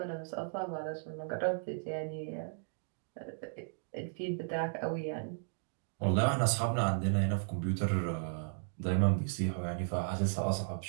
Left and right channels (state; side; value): silent; left; digital silence